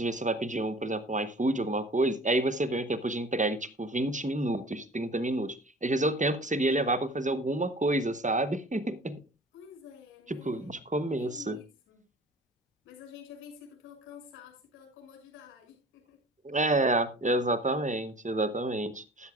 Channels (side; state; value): both; normal; correlation 0.46